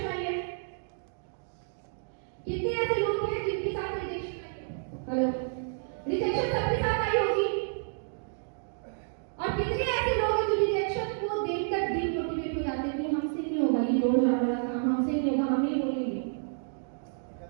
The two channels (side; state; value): left; silent; digital silence